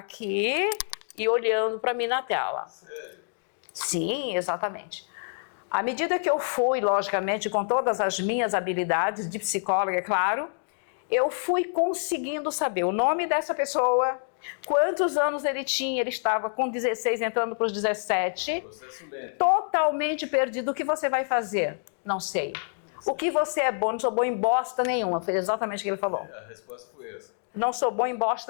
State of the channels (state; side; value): silent; right; digital silence